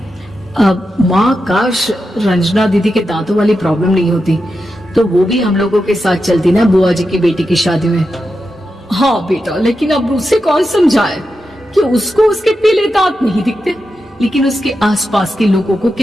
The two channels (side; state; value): both; normal; correlation 0.88